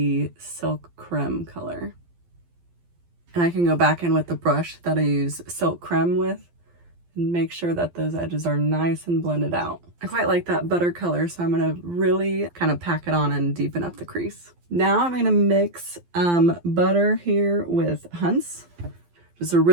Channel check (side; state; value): left; late; 12 ms